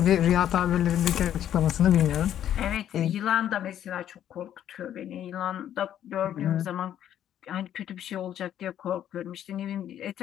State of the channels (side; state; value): right; quieter; 10.7 dB